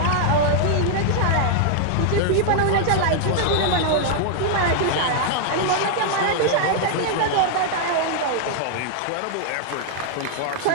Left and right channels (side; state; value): both; different; correlation -0.01